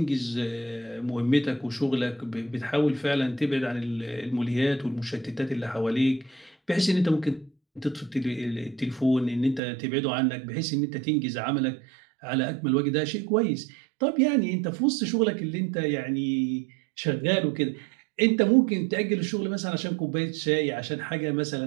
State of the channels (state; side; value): drops out; left; at 9.6 s